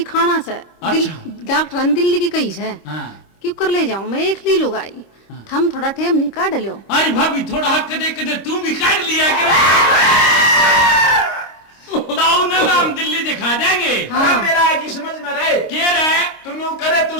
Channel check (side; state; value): right; late; 26 ms